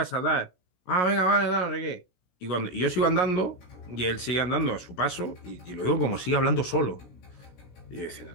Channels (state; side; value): late; right; 16 ms